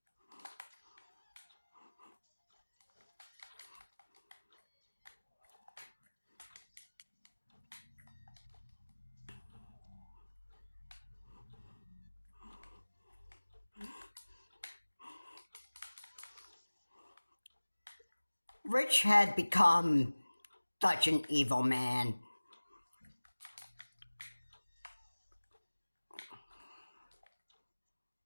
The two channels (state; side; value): inverted; both; correlation -1.00